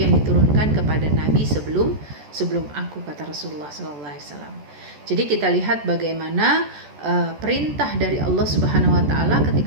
diturunkan kepada Nabi sebelum aku, kata Rasulullah SAW. Jadi kita lihat bagaimana perintah dari Allah Subhanahu Wa Taala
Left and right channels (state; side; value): late; left; 14 ms